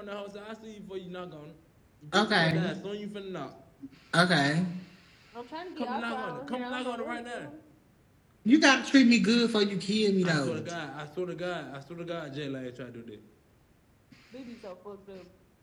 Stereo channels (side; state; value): both; identical; correlation 1.00